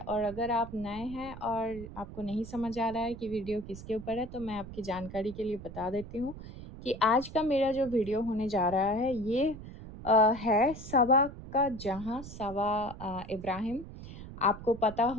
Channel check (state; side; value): noise; right; rumble, 13 dB below the sound